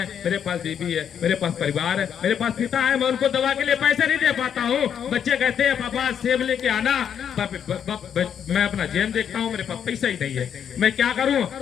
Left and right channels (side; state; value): right; quieter; 8.4 dB